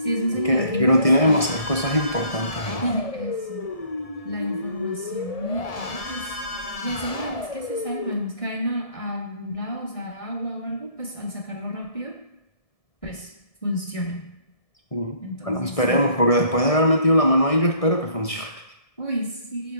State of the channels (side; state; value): right; late; 1.7 ms